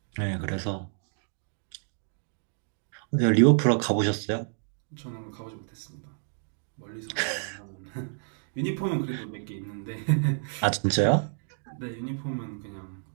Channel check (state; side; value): silent; left; digital silence